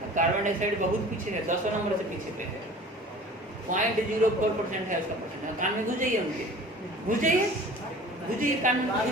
carbon dioxide बहुत पीछे है, 10 नंबर से पीछे पे है, 0.04% है उसका परसेंट। कान में घुस जाइए उनके, घुस जाइए, घुस जाइए कान में,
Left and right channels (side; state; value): both; normal; correlation 0.43